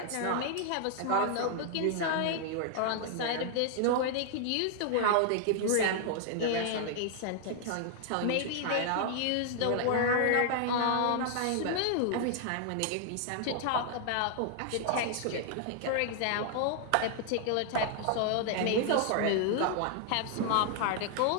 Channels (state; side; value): different; both; correlation 0.00